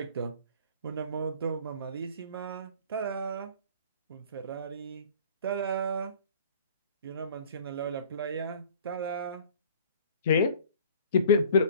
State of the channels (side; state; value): both; inverted; correlation -0.48